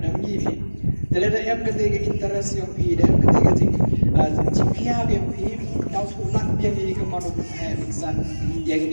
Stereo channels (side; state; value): both; inverted; correlation -1.00